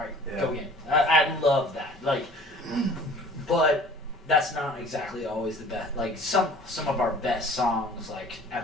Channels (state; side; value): normal; both; correlation 0.48